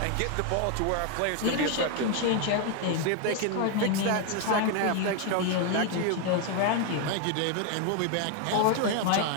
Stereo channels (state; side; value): different; both; correlation 0.01